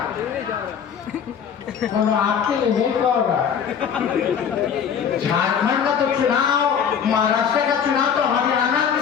तो आपके लिए नहीं कह रहा। झारखंड का तो चुनाव, महाराष्ट्र का चुनाव तो हरियाणा के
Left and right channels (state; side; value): quieter; right; 7.6 dB